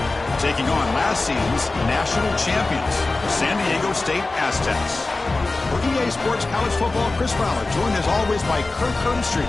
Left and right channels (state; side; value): quieter; right; 3.3 dB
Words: taking on last season's national champions, the San Diego State Aztecs. For EA Sports College Football, Chris Fowler, joined as always by Kirk Herbstreit.